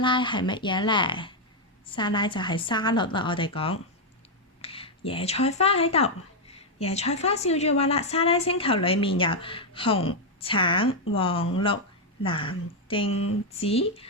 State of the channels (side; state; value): both; normal; correlation 0.01